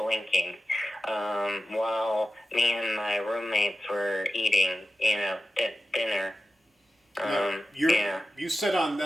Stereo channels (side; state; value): both; normal; correlation 0.92